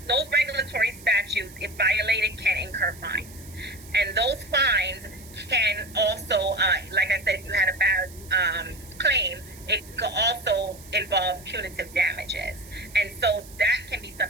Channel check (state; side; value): noise; right; hiss, 20 dB below the sound